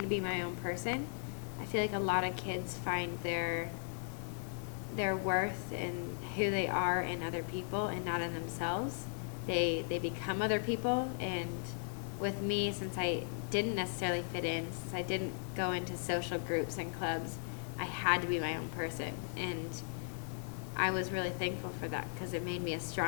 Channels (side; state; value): right; silent; digital silence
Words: be my own person. I feel like a lot of kids find their worth in who they are in other people and not in themselves. They become other people, and with me, since I didn't necessarily fit in, since I didn't go into social groups and clubs, I had to be my own person, and I was really thankful for that because it made me a